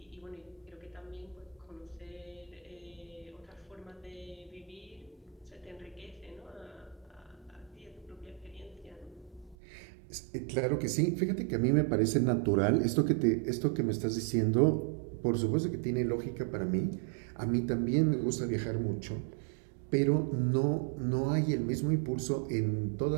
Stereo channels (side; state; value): left; drops out; at 9.6 s